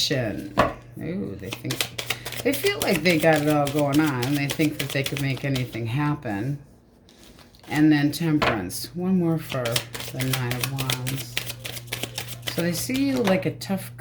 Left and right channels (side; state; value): both; identical; correlation 1.00